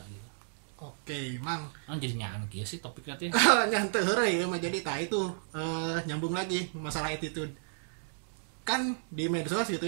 gitu. Oke, Mang. Jadi nyanyi sih topiknya tuh. Nyantai heureuy ya, jadi itu nyambung lagi masalah attitude. Kan di medsos gitu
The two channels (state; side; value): silent; left; digital silence